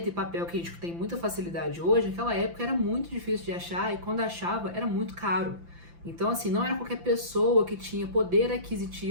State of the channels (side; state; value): left; late; 5.9 ms